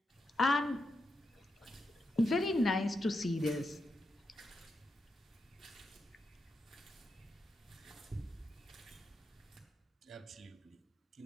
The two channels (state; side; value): normal; both; correlation 0.85